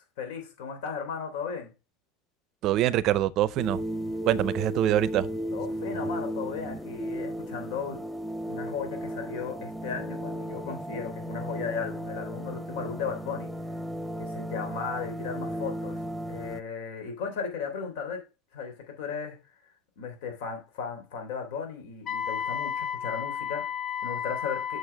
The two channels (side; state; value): both; normal; correlation 0.38